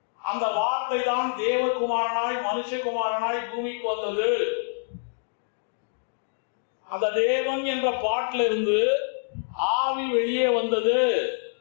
அந்த வார்த்தை தான் தேவகுமாரனாய் மனுஷகுமாரனாய் பூமிக்கு வந்தது. அந்த தேவன் என்ற பாட்டில இருந்து ஆவி வெளியே வந்தது.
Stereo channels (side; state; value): right; silent; digital silence